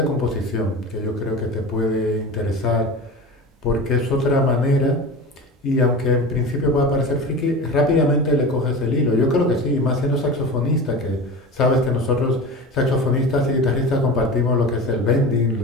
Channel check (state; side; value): normal; both; correlation 0.31